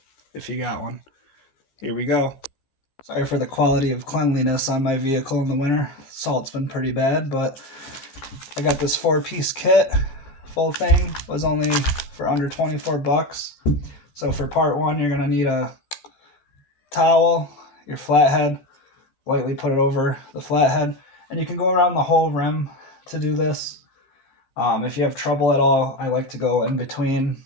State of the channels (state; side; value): late; right; 15 ms